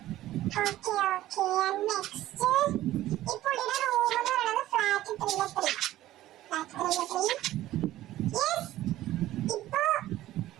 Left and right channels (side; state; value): left; quieter; 14.7 dB